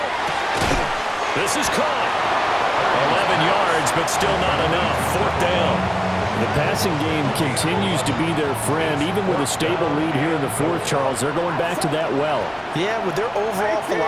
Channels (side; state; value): both; identical; correlation 1.00